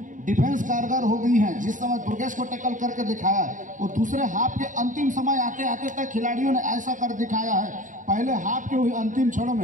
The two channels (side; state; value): left; late; 0.37 ms